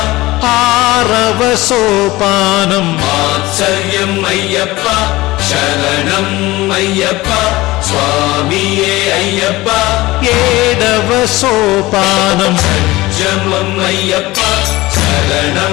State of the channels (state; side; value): quieter; right; 19.3 dB